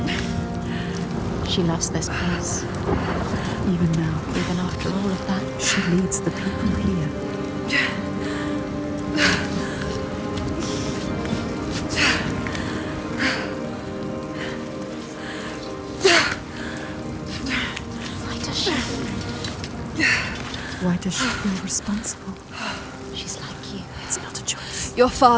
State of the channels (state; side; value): identical; both; correlation 1.00